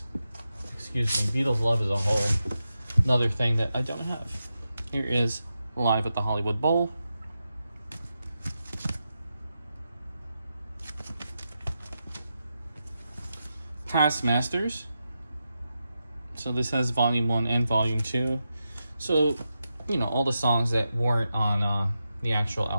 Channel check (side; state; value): both; inverted; correlation -0.88